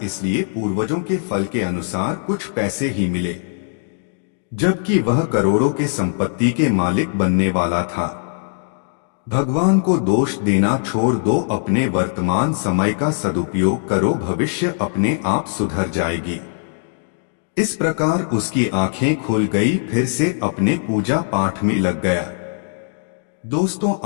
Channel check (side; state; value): right; silent; digital silence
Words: इसलिए पूर्वजों के फल के अनुसार कुछ पैसे ही मिले, जबकि वह करोड़ों के संपत्ति के मालिक बनने वाला था। भगवान को दोष देना छोड़ दो, अपने वर्तमान समय का सदुपयोग करो, भविष्य अपने आप सुधर जाएगी। इस प्रकार उसकी आंखें खुल गई, फिर से अपने पूजा पाठ में लग गया। दोस्तों,